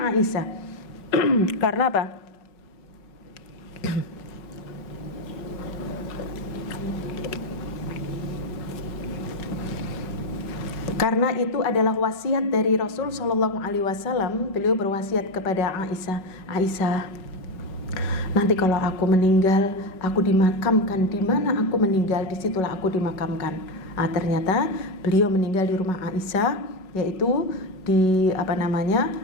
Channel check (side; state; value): right; late; 5.4 ms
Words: Aisyah. Karena apa? Karena itu adalah wasiat dari Rasul Sallallahu Alaihi Wasallam. Beliau berwasiat kepada Aisyah, Aisyah, nanti kalau aku meninggal, aku dimakamkan di mana aku meninggal, disitulah aku dimakamkan. Ternyata beliau meninggal di rumah Aisyah, yaitu di